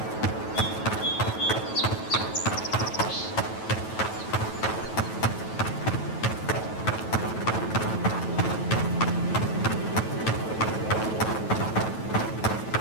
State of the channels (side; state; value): right; late; 9.2 ms